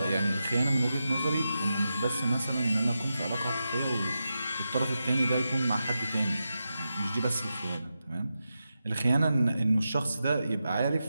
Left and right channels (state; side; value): inverted; both; correlation -0.90